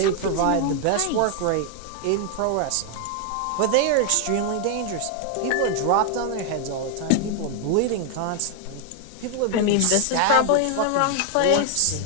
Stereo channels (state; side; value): different; both; correlation 0.00